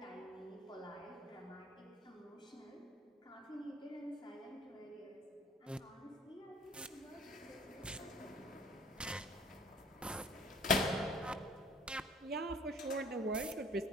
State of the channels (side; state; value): both; normal; correlation 0.52